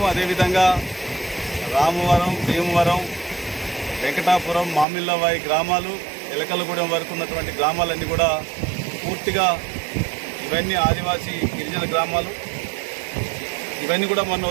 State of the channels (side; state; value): left; drops out; at 4.9 s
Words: అదేవిధంగా రామవరం, భీమవరం, వెంకటాపురం, మామిళ్ళవాయి గ్రామాలు, ఎలకలగూడెం వరకు ఉన్నటువంటి గ్రామాలన్నీ కూడా పూర్తిగా ఇవన్నీ ఆదివాసీ గిరిజన గ్రామాలు. ఇవన్నీ కూడా